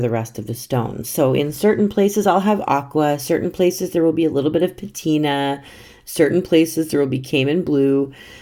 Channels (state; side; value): identical; both; correlation 1.00